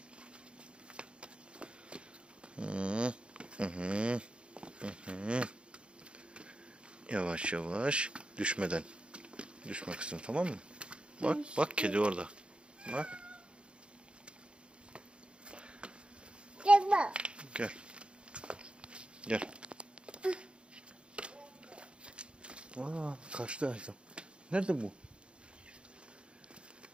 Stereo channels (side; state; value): left; late; 0.056 ms